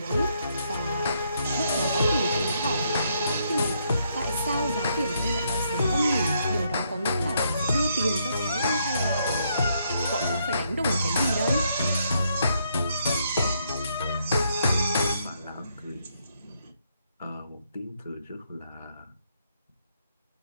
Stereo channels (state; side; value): inverted; both; correlation -0.75